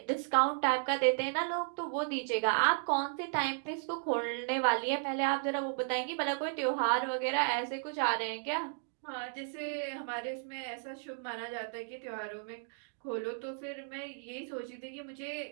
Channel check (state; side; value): silent; left; digital silence